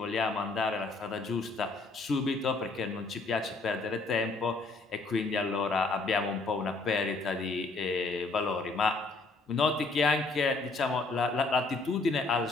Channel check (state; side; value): quieter; right; 3.6 dB